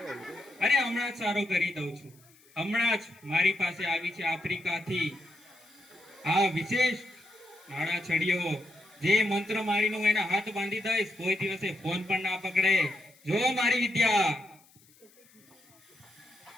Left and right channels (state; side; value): noise; left; hiss, 29 dB below the sound